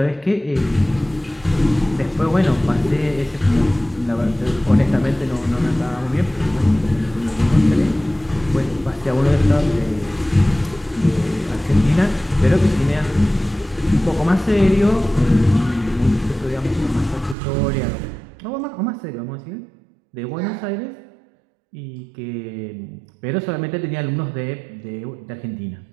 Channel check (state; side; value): drops out; left; at 17.4 s